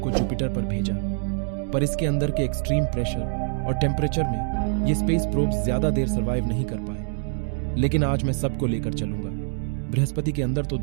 को जुपिटर पर भेजा, पर इसके अंदर के एक्सट्रीम प्रेशर और टेम्परेचर में ये स्पेस प्रोब्स ज्यादा देर सर्वाइव नहीं कर पाए। लेकिन आज मैं सबको लेकर चलूंगा बृहस्पति के अंदर। तो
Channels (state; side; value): silent; left; 62 dB below the other